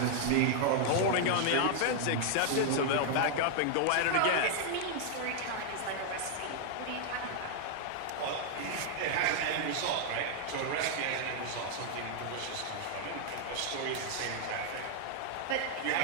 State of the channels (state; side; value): different; both; correlation 0.00